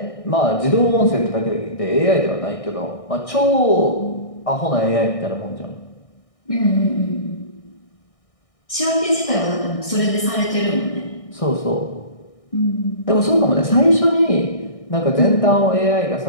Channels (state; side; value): late; right; 1.6 ms